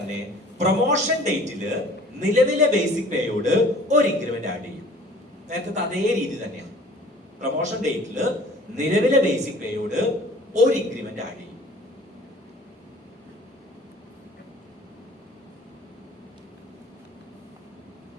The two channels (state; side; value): normal; both; correlation 0.49